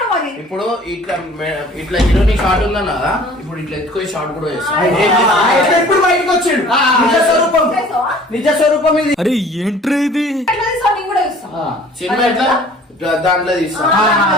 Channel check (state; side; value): normal; both; correlation 0.50